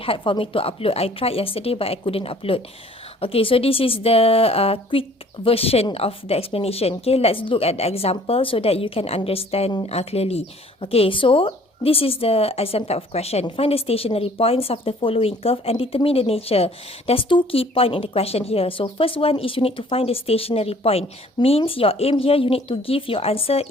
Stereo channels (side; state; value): both; normal; correlation 0.55